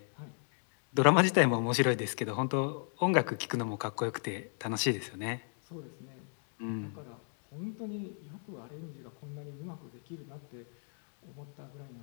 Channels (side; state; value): right; silent; 54 dB below the other